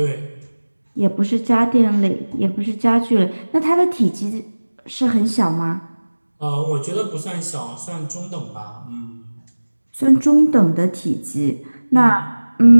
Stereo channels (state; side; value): inverted; both; correlation -1.00